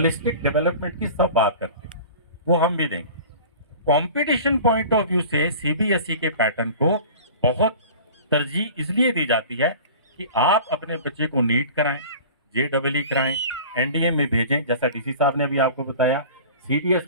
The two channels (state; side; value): inverted; both; correlation -0.41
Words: डेवलपमेंट की सब बात करते हैं, वो हम भी देंगे। कंपटीशन पॉइंट ऑफ व्यू से सीबीएसई के पैटर्न को बहुत तरजीह इसलिए दी जाती है कि आप अपने बच्चे को नीट कराएं, जेडबलई कराएं, एनडीए में भेजें, जैसा डीसी साहब ने भी आपको बताया, सीडीएस